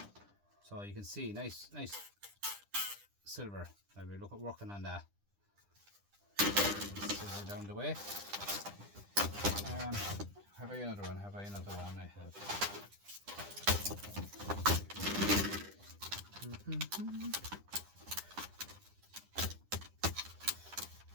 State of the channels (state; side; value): late; left; 10 ms